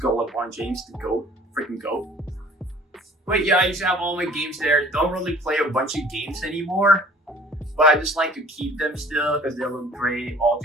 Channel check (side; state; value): both; normal; correlation 0.51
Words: LeBron James, the GOAT, freaking GOAT. But yeah, I used to have all my games there. Don't really play a bunch of games anymore, but I just like to keep them still because they look great all